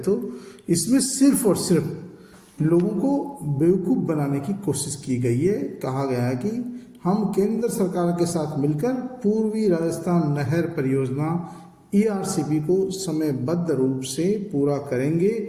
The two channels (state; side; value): identical; both; correlation 1.00